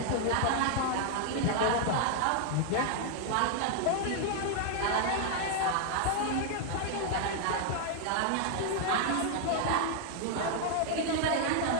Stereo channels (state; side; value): different; both; correlation 0.00